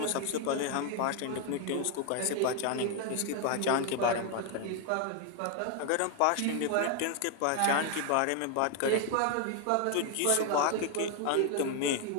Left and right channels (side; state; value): both; different; correlation 0.00